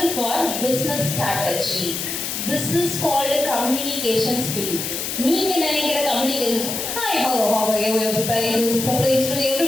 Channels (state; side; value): noise; left; hiss, 4 dB below the sound